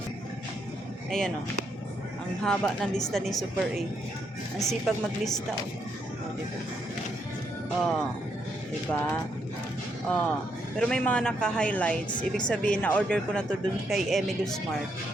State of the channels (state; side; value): normal; both; correlation 0.77